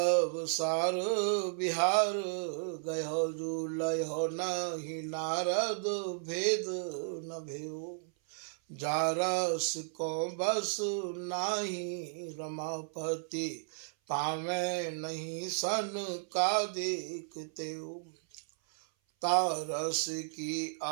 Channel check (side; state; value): left; silent; 55 dB below the other